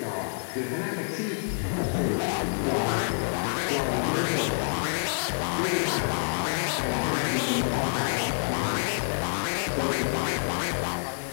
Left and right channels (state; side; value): silent; right; 56 dB below the other